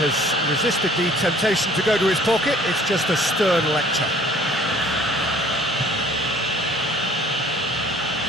resisted the temptation to go to his pocket, it's just a stern lecture.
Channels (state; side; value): normal; both; correlation 0.54